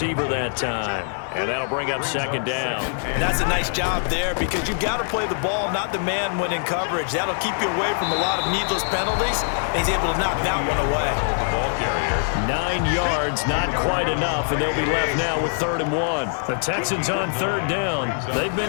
that time. And that'll bring up second down. And that's a nice job there because you've got to play the ball, not the man when in coverage. That'll keep you away from a lot of needless penalties. And he's able to knock that one away. 9 yards, not quite enough, and they'll be left now with 3rd and 1. The Texans on 3rd down. They've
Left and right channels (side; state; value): right; silent; digital silence